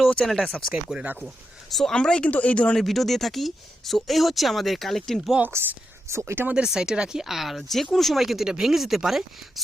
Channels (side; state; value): both; normal; correlation 0.86